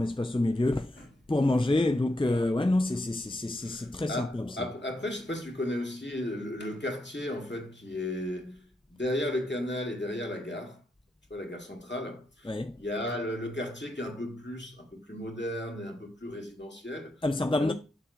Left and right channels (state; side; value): normal; both; correlation 0.81